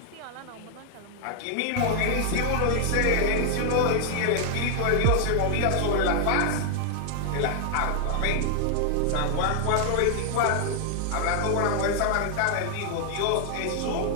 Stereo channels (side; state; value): both; different; correlation 0.00